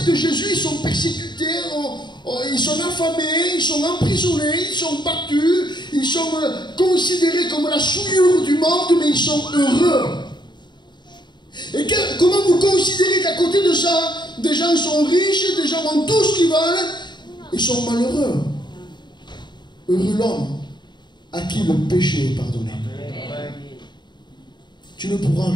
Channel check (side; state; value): right; late; 0.22 ms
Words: Jésus, ils sont persécutés, ils sont affamés, ils sont emprisonnés, ils sont battus, ils sont considérés comme la souillure du monde, mais ils sont heureux. Et comment vous considérez qu'à côté de ça, des gens sont riches, des gens ont tout ce qu'ils veulent, ils sont malheureux? Heureux l'homme à qui le péché est pardonné. Tu ne pourras